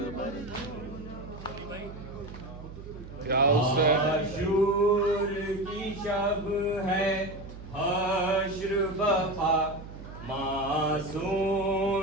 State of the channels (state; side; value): noise; right; hum, 13 dB below the sound